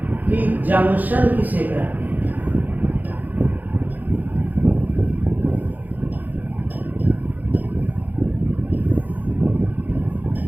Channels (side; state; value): left; late; 0.083 ms